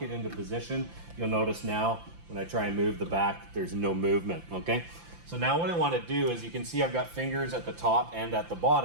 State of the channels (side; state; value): left; late; 5.8 ms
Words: it into position. You'll notice now when I try and move the back, there's no movement, okay? So now what I want to do is, you can see I've got fingers at the top and at the